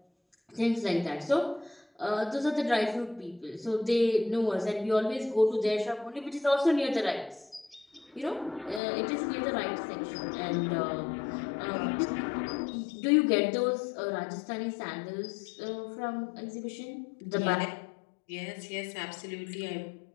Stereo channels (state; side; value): drops out; right; at 8.8 s